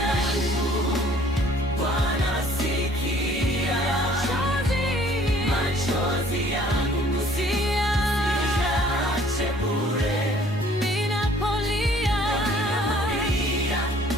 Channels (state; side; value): normal; both; correlation 0.57